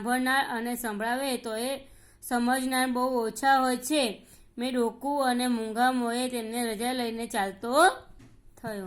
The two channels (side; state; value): both; identical; correlation 1.00